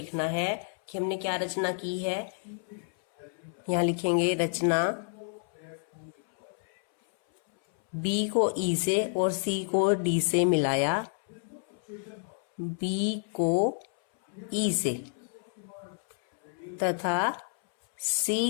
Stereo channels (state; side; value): silent; right; 58 dB below the other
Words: है कि हमने क्या रचना की है। यहाँ लिखेंगे रचना, B को E से और C को D से मिलाया, B को E से तथा